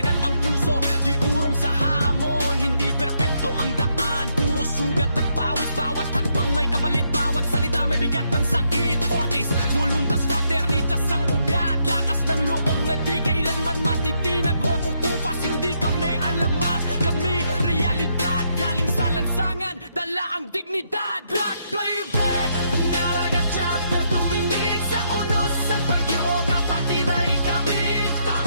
ang puso, di urong sa hamon. Hindi perpekto ang daan, puro sugat at pawis. Bawat hakbang may kapalit, bawat salita may bigat ng sakit. Fortis, voluntas, fraternitas ang ugat. Lakas ng loob na di kailanman matitinag o kukupas. Hindi kami alamat, kami realidad. Galing sa lansangan, dala ang dignidad. Blood playback, Mandaragat Chapter tuminig sa unos sa bagyo. Kapatid ay kami,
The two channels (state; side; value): inverted; both; correlation -0.76